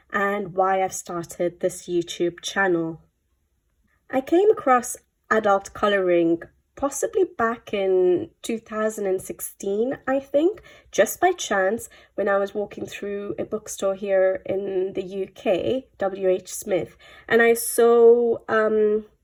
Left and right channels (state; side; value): identical; both; correlation 1.00